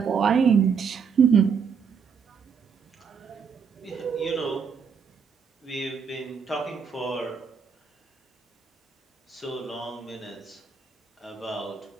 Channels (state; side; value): quieter; left; 6.3 dB